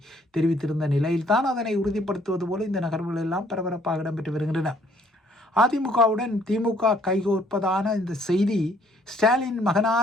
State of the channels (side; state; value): both; normal; correlation 0.63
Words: தெரிவித்திருந்த நிலையில்தான் அதனை உறுதிப்படுத்துவது போல இந்த நகர்வுகள் எல்லாம் பரபரப்பாக இடம்பெற்று வருகின்றன. அதிமுகவுடன் திமுக கைகோர்ப்பதான இந்த செய்தி ஸ்டாலின்